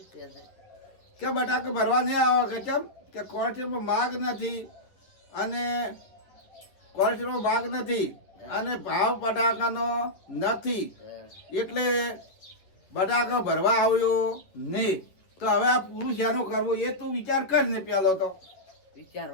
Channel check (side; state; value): right; late; 10 ms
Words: કહે છે કે બટાકા ભરવા નહીં આવો કે કેમ કે કોર્ટમાં માગ નથી અને કોર્ટમાં માગ નથી અને ભાવ બટાકાનો નથી હા એટલે બટાકા ભરવા આવ્યો નહીં તો હવે આ પૂરું શેનું કરવું એ તું વિચાર કર ને પેલો તો